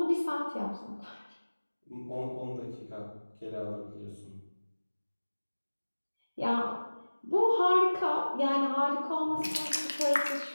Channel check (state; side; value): inverted; both; correlation -1.00